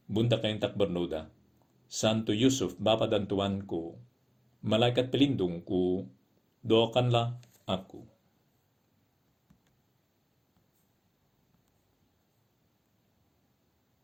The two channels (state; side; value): identical; both; correlation 1.00